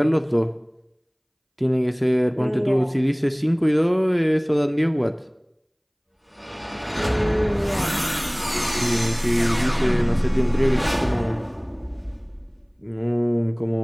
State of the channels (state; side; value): identical; both; correlation 1.00